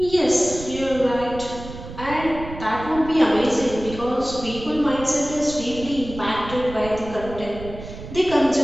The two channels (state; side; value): noise; right; rumble, 12 dB below the sound